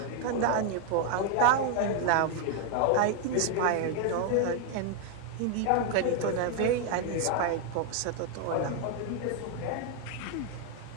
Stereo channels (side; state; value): both; different; correlation 0.00